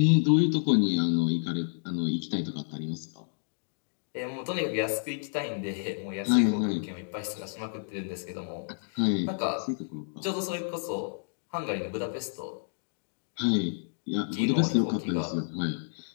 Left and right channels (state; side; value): silent; right; digital silence